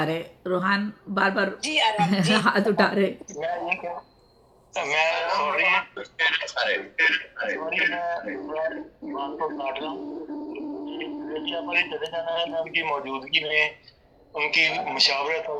رہے, روحان بار بار جی ارحم جی ہاتھ اٹھا رہے. ان کی موجودگی میں, ان کی مشاورت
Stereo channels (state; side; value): identical; both; correlation 1.00